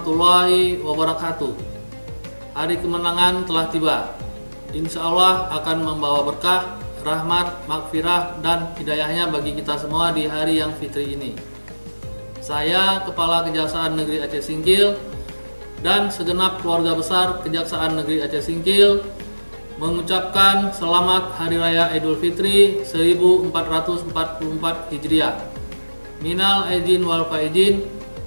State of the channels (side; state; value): both; inverted; correlation -1.00